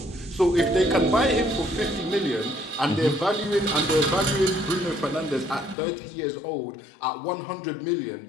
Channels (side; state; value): right; drops out; at 5.8 s